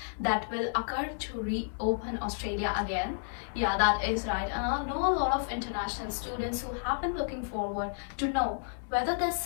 that will occur to reopen Australia again. Yeah, that is right. And I know a lot of international students who have been looking forward to know whether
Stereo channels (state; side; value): silent; right; digital silence